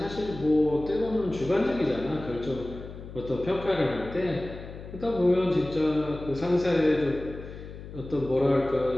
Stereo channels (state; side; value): noise; left; hum, 13 dB below the sound